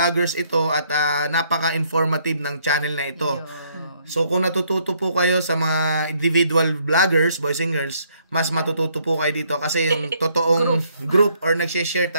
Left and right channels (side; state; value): both; inverted; correlation -0.68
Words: ito at napaka-informative ng channel na ito. So kung natututo po kayo sa mga individual vloggers, boys and girls, mas matututo po kayo dito kasi yung totoong group or nag-share